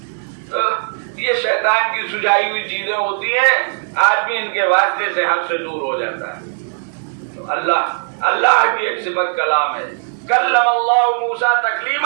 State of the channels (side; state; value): left; silent; 60 dB below the other